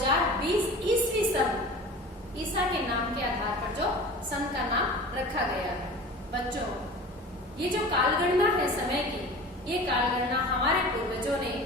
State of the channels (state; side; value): normal; both; correlation 0.38